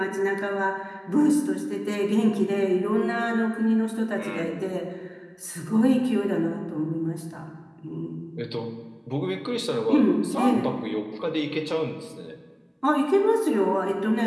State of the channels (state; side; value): identical; both; correlation 1.00